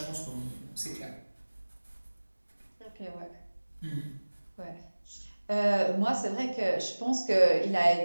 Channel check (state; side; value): inverted; both; correlation -1.00